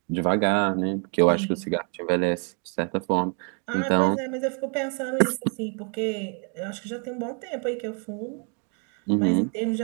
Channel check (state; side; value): quieter; left; 38.6 dB